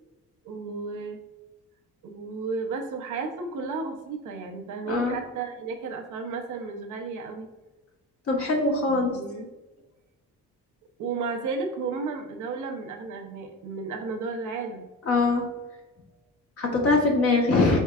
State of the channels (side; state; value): both; normal; correlation 0.29